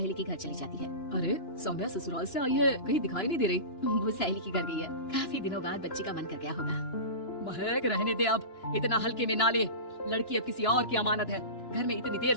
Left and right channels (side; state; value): right; late; 2.9 ms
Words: के घर चली जाती है। अरे सौम्या ससुराल से आई है, कहीं दिखाई नहीं दे रही। वो सहेली के घर गई है, काफी दिनों बाद बच्ची का मन कर गया होगा। महक रहने दे, अब इतना हल्के में ना ले, लड़की अब किसी और की अमानत है। घर में इतनी देर